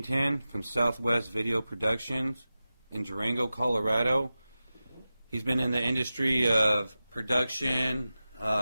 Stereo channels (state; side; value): inverted; both; correlation -0.94